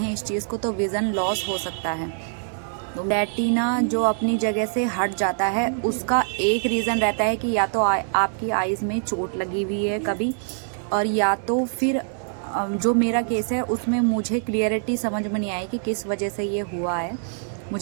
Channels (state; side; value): silent; left; digital silence